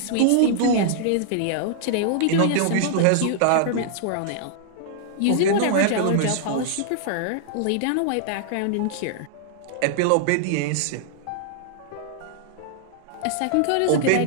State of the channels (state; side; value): different; both; correlation -0.01